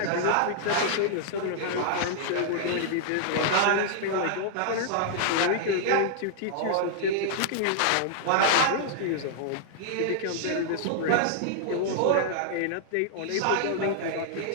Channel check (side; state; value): both; different; correlation -0.01